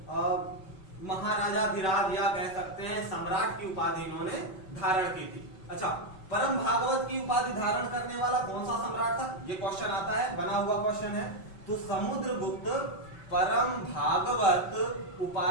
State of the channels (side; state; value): right; late; 5.3 ms